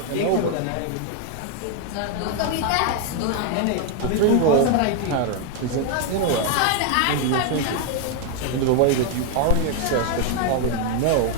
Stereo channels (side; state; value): both; different; correlation 0.01